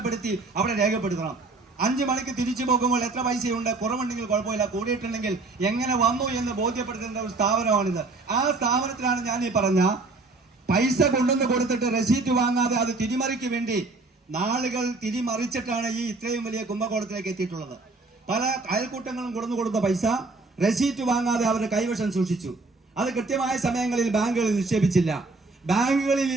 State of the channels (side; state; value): left; quieter; 3.5 dB